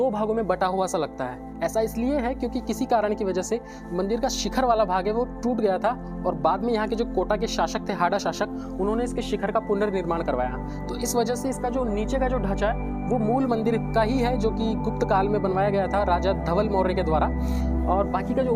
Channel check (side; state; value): both; identical; correlation 1.00